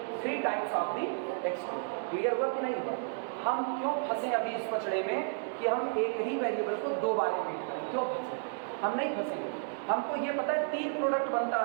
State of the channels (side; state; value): left; silent; digital silence